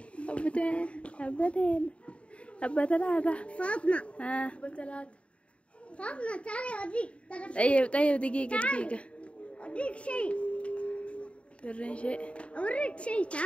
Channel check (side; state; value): right; late; 0.061 ms